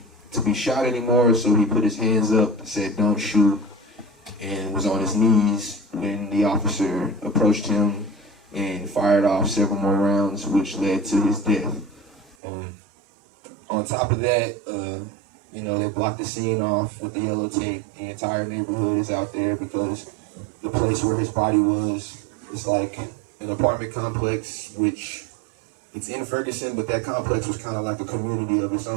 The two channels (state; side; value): drops out; left; at 12.4 s